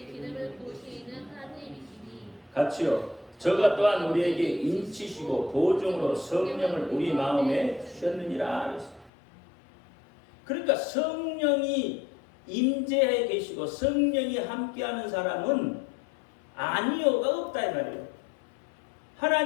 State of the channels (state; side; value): drops out; right; at 9.1 s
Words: 기름을 부으시는 하나님이시니 같이요. 저가 또한 우리에게 인치시고 보증으로 성령을 우리 마음에 주셨느니라. 그러니까 성령이 임재해 계시고 성령이 함께하는 사람은 아니오가 없다 이 말이에요.